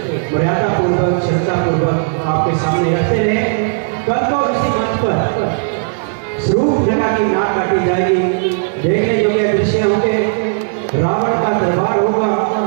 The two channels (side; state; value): left; silent; 69 dB below the other